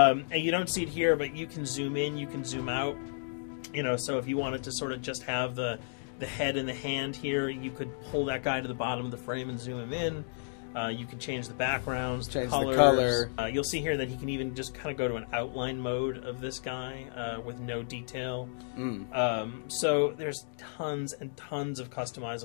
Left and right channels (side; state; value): right; silent; digital silence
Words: you don't see it here, but you can zoom in, you can zoom out. So if you wanted to sort of just have the head and the hand here, you could pull that guy to the bottom of the frame and zoom him in. You can change the backgrounds, Change colors. the color. You'll see here that he can even just kind of go to an outline mode of this guy with no detail. So there's tons and tons of